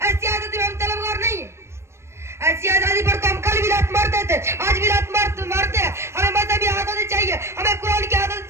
ایسی آزادی میں ہم طلبگار نہیں ہیں ایسی آزادی پر تو ہم کل بھی لات مارتے تھے آج بھی لات مارتے ہیں ہمیں مذہبی آزادی چاہیے ہمیں قرآن کی آزادی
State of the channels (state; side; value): late; left; 0.13 ms